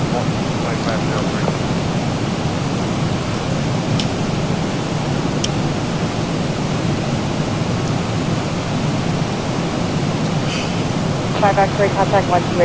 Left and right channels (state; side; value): identical; both; correlation 1.00